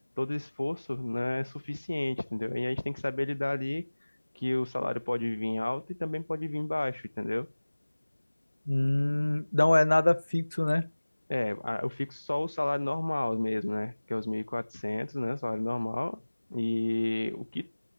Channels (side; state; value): both; inverted; correlation -1.00